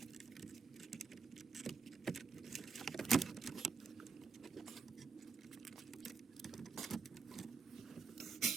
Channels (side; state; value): left; quieter; 5.2 dB